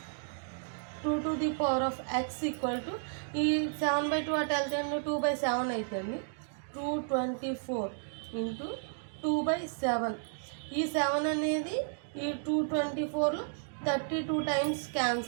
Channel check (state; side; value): silent; left; digital silence